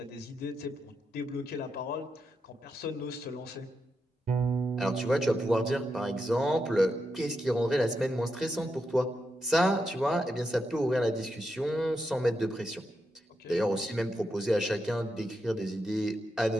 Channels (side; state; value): both; normal; correlation 0.85